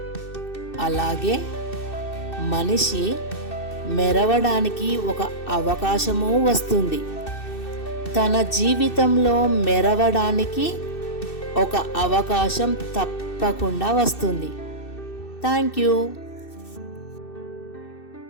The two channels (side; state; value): right; late; 2.6 ms